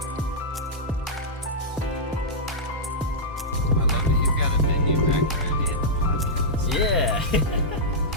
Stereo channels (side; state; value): both; normal; correlation -0.10